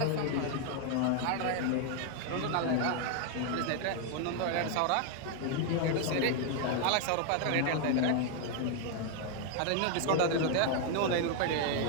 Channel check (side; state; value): both; different; correlation 0.00